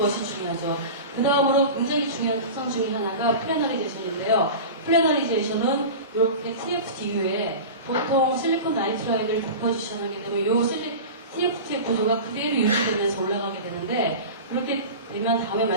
중요하죠. 그 다음으로 굉장히 중요한 특성 중에 하나가 플래너리제이션인데요. 플래너리제이션은 이렇게 TFT 이후에 보통 실리콘 나이트라이드를 디포지션하게 되면 이 TFT의 구조가 그대로 유지되면서 올라가게 되는데 그렇게 되면 다음에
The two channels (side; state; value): both; inverted; correlation -0.30